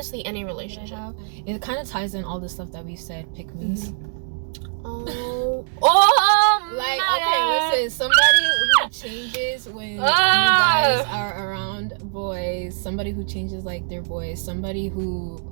any relationship. It kind of ties in all the stuff that we said. Pick me's. Oh, like okay, listen. Somebody who changes when you guys are around boys. Somebody who changes like their boys. Somebody who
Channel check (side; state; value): left; silent; digital silence